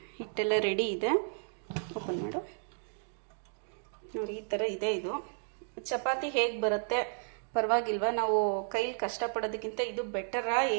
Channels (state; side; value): silent; left; digital silence